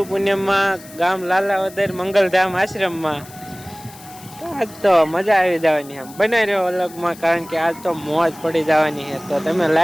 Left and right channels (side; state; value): left; noise; hiss, 20 dB below the sound